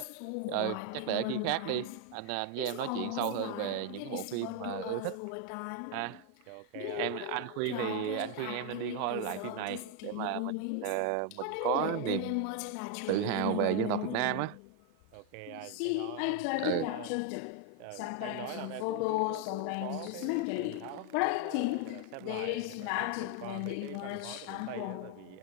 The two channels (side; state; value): both; different; correlation 0.01